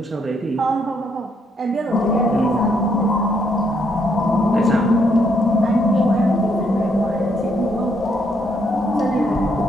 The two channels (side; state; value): both; normal; correlation 0.73